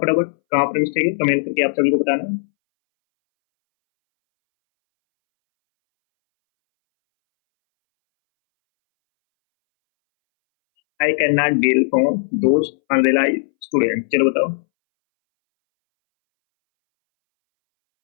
फटाफट कहाँ पर मिस्टेक है, कमेंट करके आप सभी को बताना। I can not deal from those unrealise student. चलो बताओ।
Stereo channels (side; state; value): right; silent; 65 dB below the other